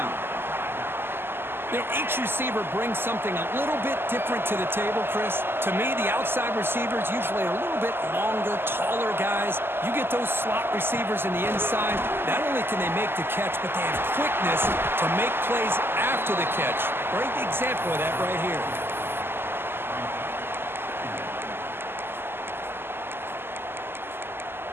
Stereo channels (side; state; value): left; late; 0.11 ms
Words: You know, each receiver brings something a little bit different to the table, Chris. To me, the outside receivers usually are a little bit longer, taller guys. You get those slot receivers in the inside, not only can they make the catch, but they have quickness to make plays after the catch. Great example of that right here.